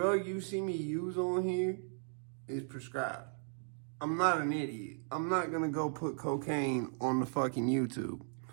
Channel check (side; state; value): left; silent; 54 dB below the other